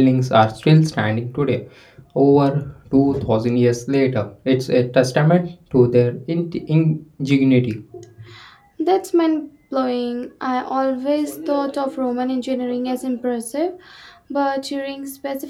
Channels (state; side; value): identical; both; correlation 1.00